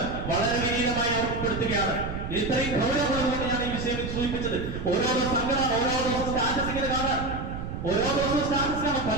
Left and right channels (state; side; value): noise; right; rumble, 6 dB below the sound